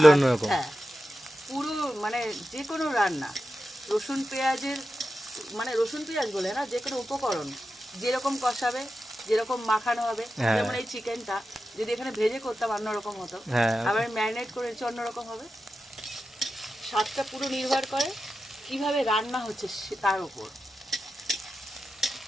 অন্যরকম। হ্যাঁ, পুরো মানে যে কোনো রান্না রসুন পেঁয়াজের, মানে রসুন পেঁয়াজ বলে না, যে কোনো উপকরণ যেরকম কষাবে, যেরকম মাখানো হবে। হ্যাঁ। যেমন এই চিকেনটা যদি এখানে ভেজে করতাম অন্যরকম হতো, হ্যাঁ, আবার ম্যারিনেট করেছি অন্যরকম হবে। স্বাদটা পুরো নির্ভর করে কিভাবে রান্না হচ্ছে তার উপর।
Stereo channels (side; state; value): both; normal; correlation 0.91